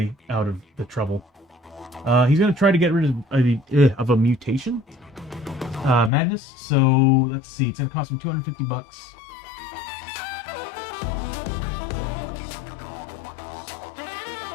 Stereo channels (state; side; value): drops out; right; at 6.1 s